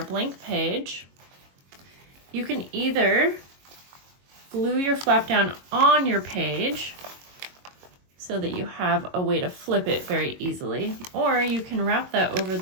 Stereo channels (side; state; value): left; late; 22 ms